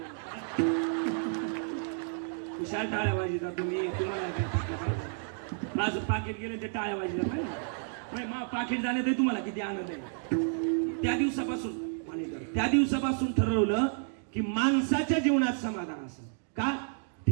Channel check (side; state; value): left; silent; digital silence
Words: हुशार टाळ्या वाजता तुम्ही, तुम्हाला काय माझं पाकिट गेलं ते टाळ्या वाजल्या काय? मग पाकिट जाण्यात तुम्हाला किती आनंद आहे. त्या दिवसापासून ठरवलं की माणसाच्या जीवनात समाधान असं का,